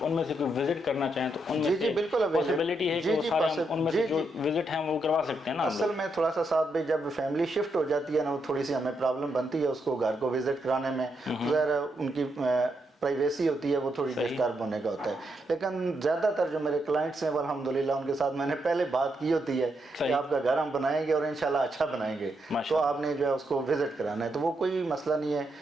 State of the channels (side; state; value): both; normal; correlation 0.80